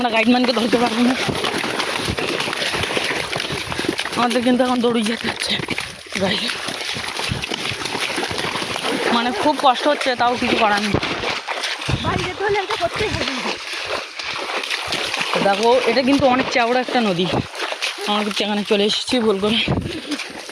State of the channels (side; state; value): both; identical; correlation 1.00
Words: গাইডম্যানকে ধরতে পারবো না। আমাদের কিন্তু এখন দৌড়ি যেতে হচ্ছে ভাই, মানে খুব কষ্ট হচ্ছে, তাও কিছু করার নেই। দেখো এটা কিন্তু অনেক চওড়া একটা নদী, আমরা কিন্তু এখানে চলে এসেছি ভুল করে,